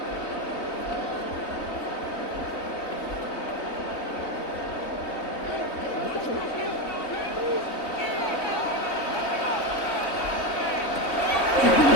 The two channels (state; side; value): late; right; 3.8 ms